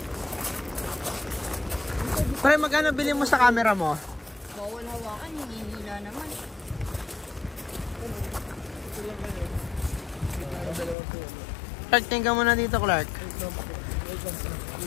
Bray, magkano bili mo sa camera mo? bawal hawakan, hinihila naman. Clark, tingnan mo na dito, Clark.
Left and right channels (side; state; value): right; drops out; at 11.0 s